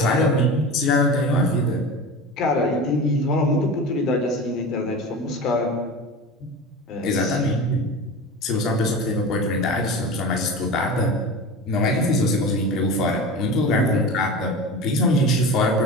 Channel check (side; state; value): both; normal; correlation 0.31